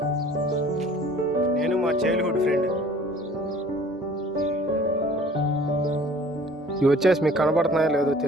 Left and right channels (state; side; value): normal; both; correlation 0.51